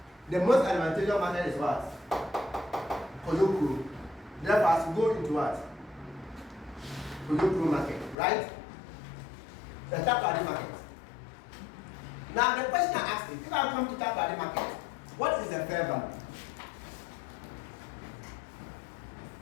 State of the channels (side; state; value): right; drops out; at 8.2 s